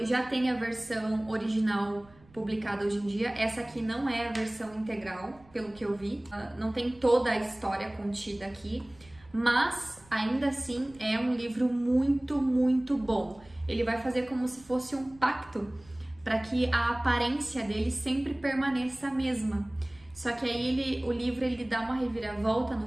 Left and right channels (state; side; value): noise; right; rumble, 26 dB below the sound